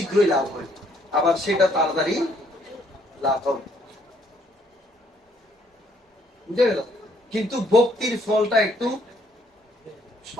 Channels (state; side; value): normal; both; correlation 0.67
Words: লাভ হয়, আবার সেটা তাড়াতাড়ি লাভ হবে। বুঝে গেল? কিন্তু ভক্তির ফলটা একটু